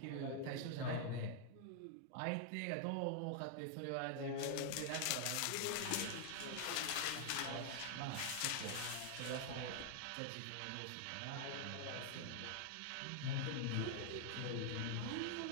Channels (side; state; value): both; different; correlation 0.00